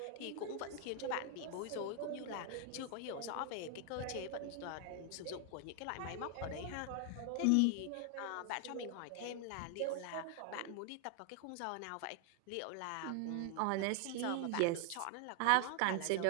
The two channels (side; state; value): both; different; correlation 0.00